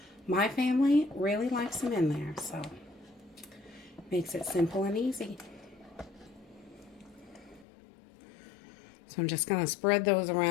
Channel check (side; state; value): right; drops out; at 7.7 s